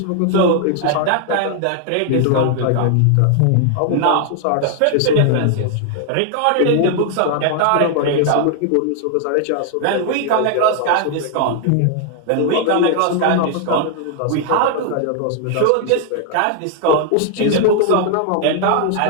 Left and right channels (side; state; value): both; different; correlation 0.00